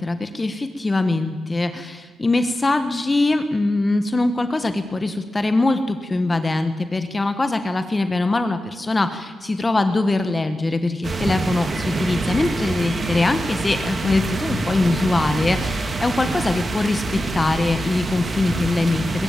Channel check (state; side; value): normal; both; correlation 0.93